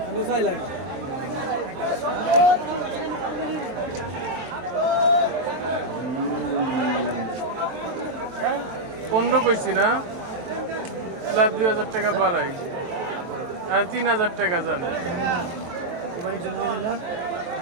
আমি চাইলাম 15 কইছি না, 2,000 টাকা বাড়াই আর 3,000 টাকা যান।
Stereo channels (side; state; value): left; late; 23 ms